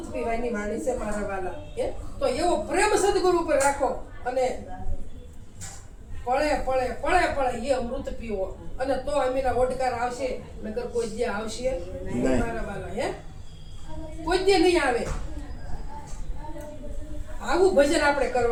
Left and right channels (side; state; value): both; identical; correlation 1.00